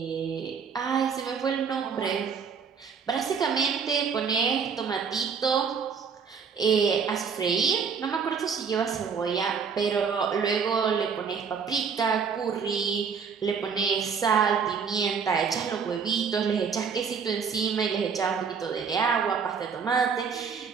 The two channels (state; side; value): quieter; left; 6.1 dB